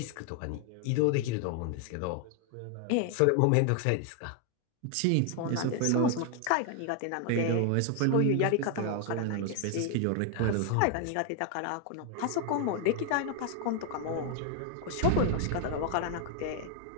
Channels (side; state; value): both; different; correlation 0.00